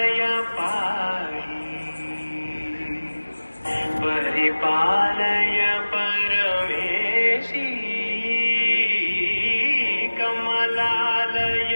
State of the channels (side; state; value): both; inverted; correlation -1.00